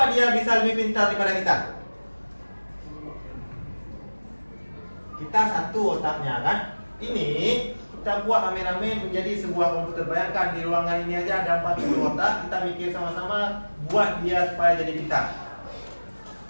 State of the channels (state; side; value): inverted; both; correlation -1.00